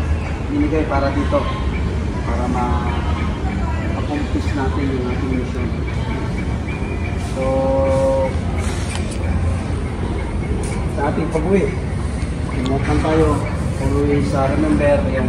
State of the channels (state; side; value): identical; both; correlation 1.00